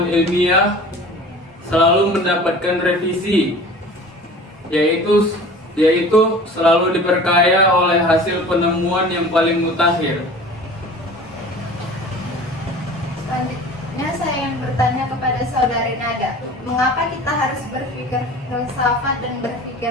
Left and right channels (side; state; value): both; normal; correlation 0.42